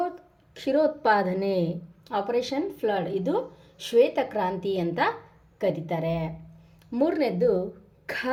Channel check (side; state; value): both; identical; correlation 1.00